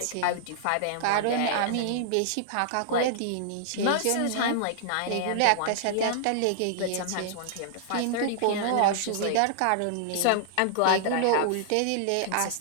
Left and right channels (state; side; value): different; both; correlation -0.01